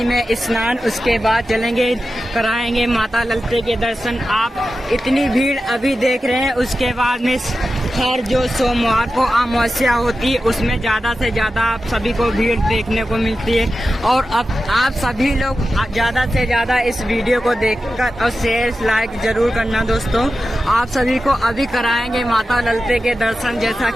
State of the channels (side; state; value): both; normal; correlation 0.92